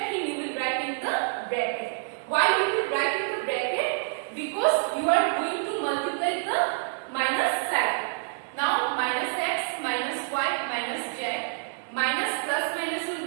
thing you will write in the bracket. Why you will write in the bracket? Because you are going to multiply the minus sign. Now minus x minus y minus z minus plus minus will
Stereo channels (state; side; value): silent; left; 60 dB below the other